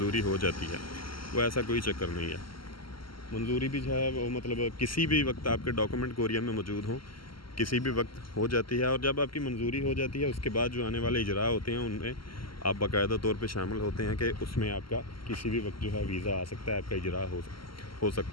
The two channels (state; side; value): late; right; 0.74 ms